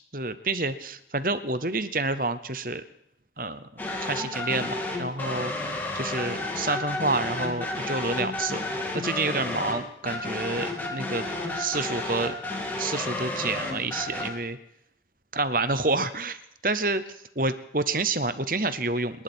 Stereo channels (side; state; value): both; normal; correlation 0.17